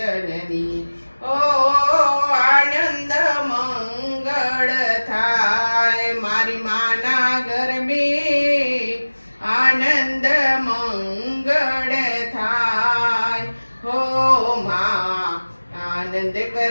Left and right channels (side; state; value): both; inverted; correlation -1.00